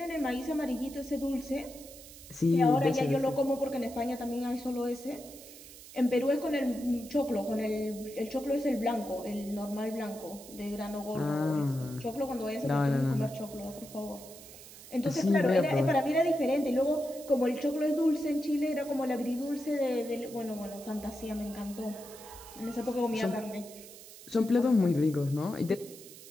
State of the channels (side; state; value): right; noise; hiss, 17 dB below the sound